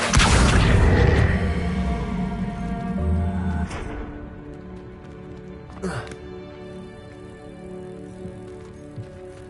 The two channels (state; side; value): identical; both; correlation 1.00